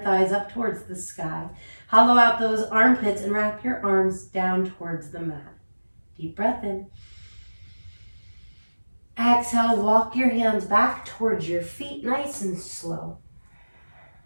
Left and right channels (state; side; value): inverted; both; correlation -1.00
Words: thighs up towards the sky. Hollow out those armpits and wrap your arms down towards the mat. Deep breath in. Exhale, walk your hands back towards your feet, nice and slow.